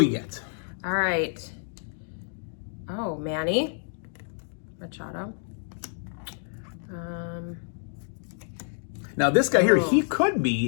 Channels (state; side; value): silent; right; 59 dB below the other